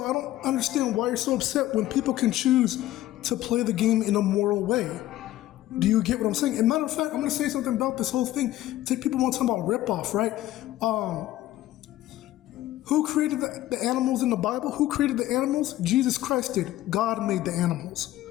I don't understand why you're so upset when people can choose to play the game in a moral way. Do you get what I'm saying? And matter of fact, I'm going to say something about this whole thing. People want to talk about ripoff, right? Who created the animals in the Bible? Who created the animals? Jesus Christ did. God made the animals,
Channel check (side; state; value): right; quieter; 14.8 dB